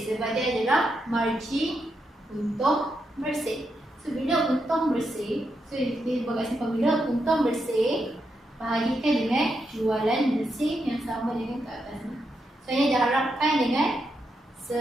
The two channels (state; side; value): normal; both; correlation 0.83